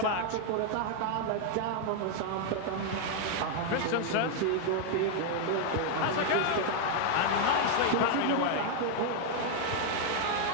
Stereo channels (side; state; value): both; different; correlation 0.00